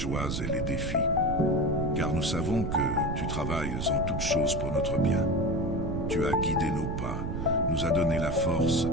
et les défis, car nous savons que tu travailles en toutes choses pour notre bien. Tu as guidé nos pas, nous as donné la force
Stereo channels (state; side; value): noise; right; rumble, 3 dB below the sound